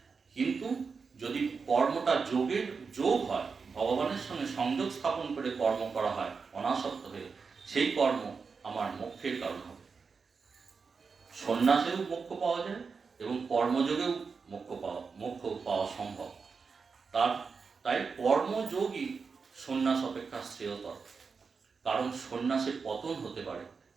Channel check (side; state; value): left; quieter; 5.2 dB